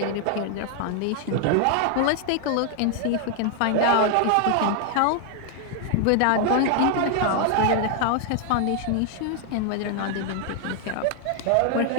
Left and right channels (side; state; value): both; different; correlation 0.00